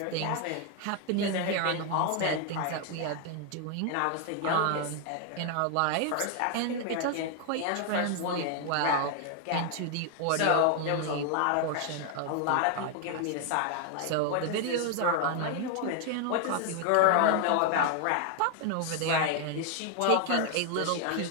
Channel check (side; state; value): both; different; correlation 0.00